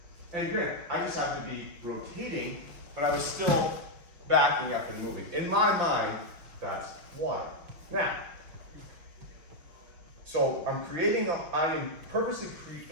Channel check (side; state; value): left; late; 6.0 ms